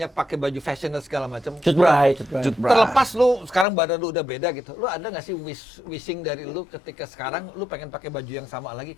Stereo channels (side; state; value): right; drops out; at 3.7 s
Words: pakai baju fashion dan segala macam. Cut Bray. Terlepas lu sekarang badan lu udah beda gitu. Lu ada nggak sih wishing dari lu ketika sekarang lu pengen pakai baju yang sama lagi